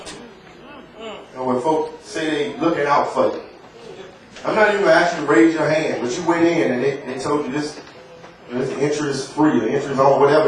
when folks say they looking out for you, I'm not even going to ask you to raise your hand, but you went in and they told you this interest free, or interest on whatever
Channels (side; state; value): both; identical; correlation 1.00